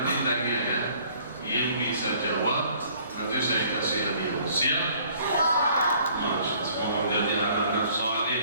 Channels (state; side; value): inverted; both; correlation -0.57